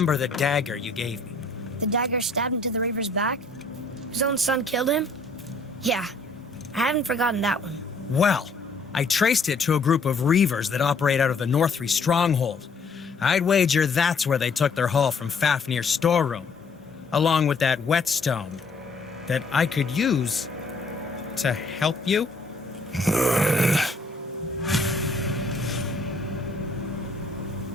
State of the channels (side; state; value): right; quieter; 3.4 dB